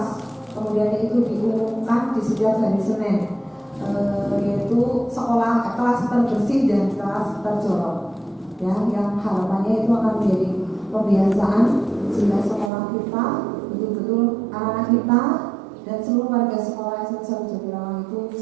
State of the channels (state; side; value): drops out; left; at 12.7 s